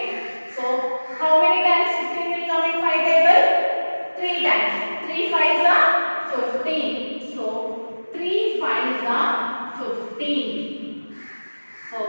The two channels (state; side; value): inverted; both; correlation -1.00